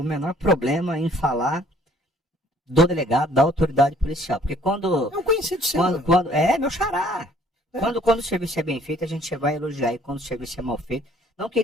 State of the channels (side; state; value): both; normal; correlation 0.59